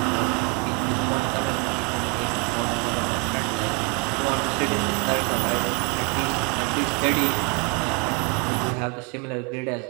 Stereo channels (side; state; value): left; quieter; 27.9 dB